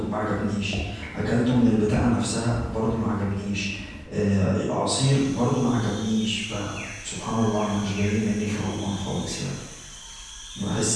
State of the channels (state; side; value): identical; both; correlation 1.00